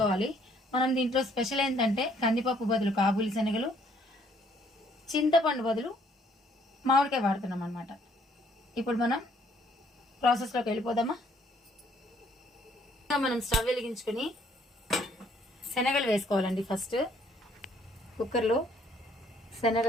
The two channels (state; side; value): normal; both; correlation 0.64